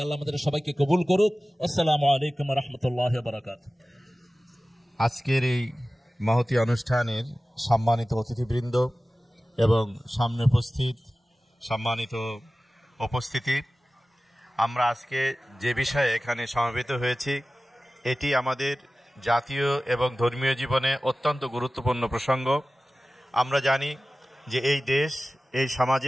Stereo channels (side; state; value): both; normal; correlation 0.96